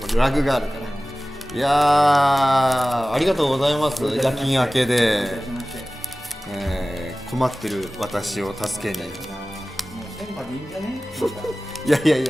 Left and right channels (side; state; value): both; normal; correlation 0.97